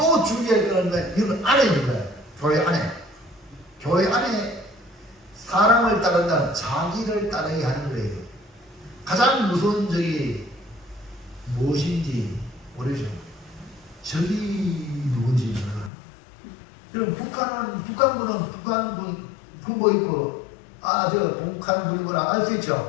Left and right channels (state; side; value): drops out; right; at 15.9 s